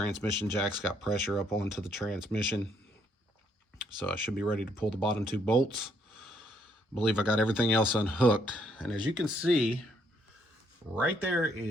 jack's got pressure up onto the transmission. So I should be ready to pull the bottom 2 bolts. I believe I got everything else unhooked. And as you can see, right there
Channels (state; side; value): normal; both; correlation 0.70